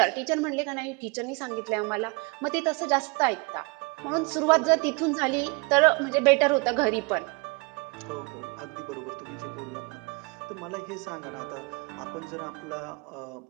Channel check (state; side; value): quieter; left; 29.4 dB